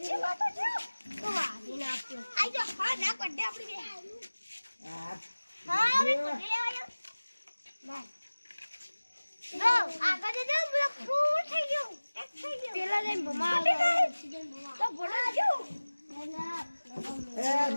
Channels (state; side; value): inverted; both; correlation -1.00